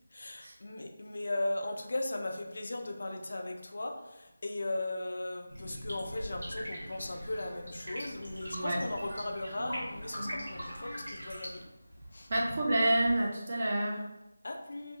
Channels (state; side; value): inverted; both; correlation -0.95